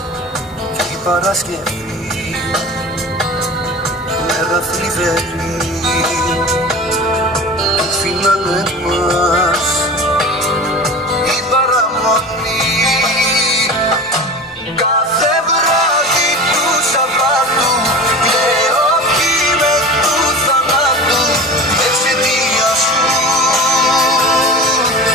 κι η Παρασκευή μέρα θλιβερή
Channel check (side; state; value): both; normal; correlation 0.33